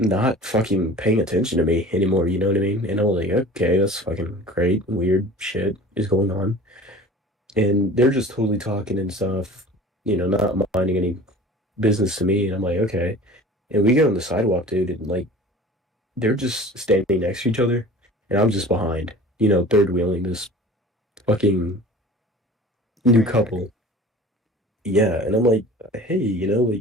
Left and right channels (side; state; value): both; normal; correlation 0.42